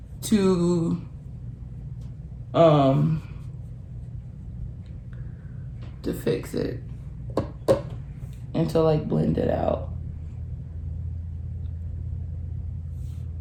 to fix it and to like blend it out.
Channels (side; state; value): both; identical; correlation 1.00